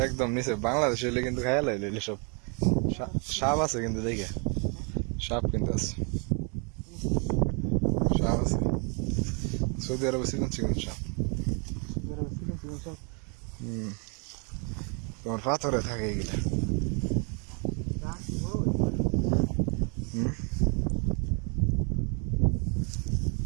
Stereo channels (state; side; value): quieter; left; 36.4 dB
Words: একদম নিচে বাংলাদেশে এলে কিন্তু খাইয়া লাইলে সব সাপ আছে কিন্তু দেখে সাপ কিন্তু আছে সাপ আছে সৌদি আরবে চিকন চিকন সাপ তোমার পাথরে থাকে এগুলা